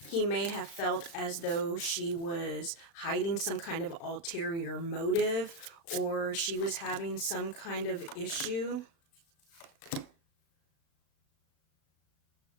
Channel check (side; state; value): right; late; 35 ms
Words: he may have felt as though she was hiding some kind of ulterior motive, or she was having some kind of issue.